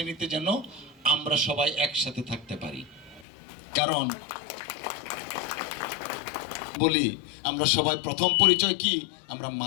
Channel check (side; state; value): right; drops out; at 3.2 s